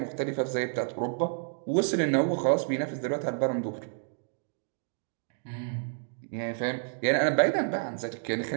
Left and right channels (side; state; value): left; silent; digital silence